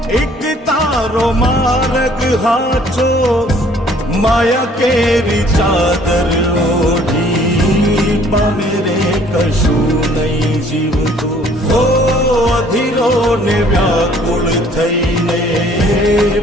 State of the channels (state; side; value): normal; both; correlation 0.58